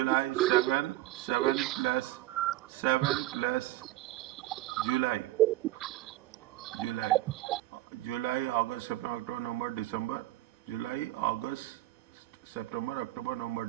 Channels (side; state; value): left; quieter; 16.3 dB